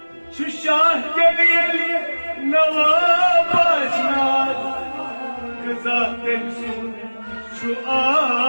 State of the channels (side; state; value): both; inverted; correlation -1.00